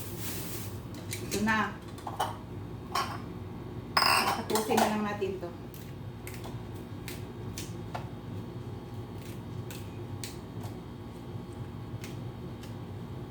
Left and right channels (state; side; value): identical; both; correlation 1.00